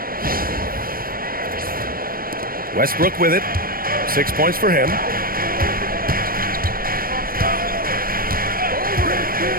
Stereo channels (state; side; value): late; left; 0.42 ms